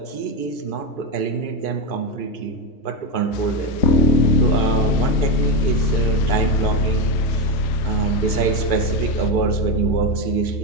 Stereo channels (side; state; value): right; late; 2.5 ms